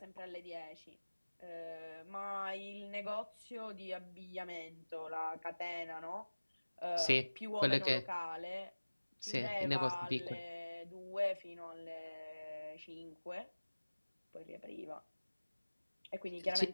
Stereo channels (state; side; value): inverted; both; correlation -1.00